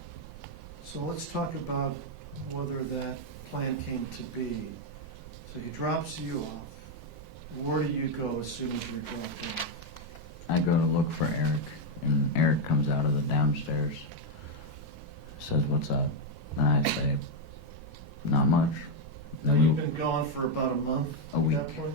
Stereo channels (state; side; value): normal; both; correlation 0.03